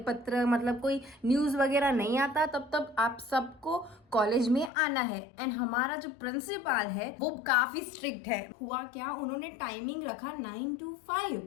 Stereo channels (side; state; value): right; drops out; at 4.7 s